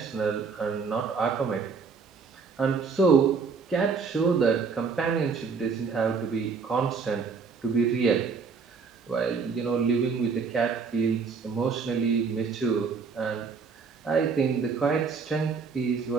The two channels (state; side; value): quieter; left; 5.3 dB